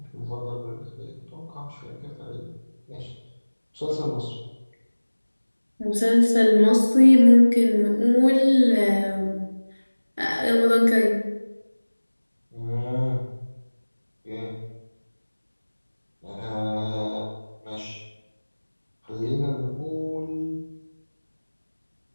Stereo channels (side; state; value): both; inverted; correlation -1.00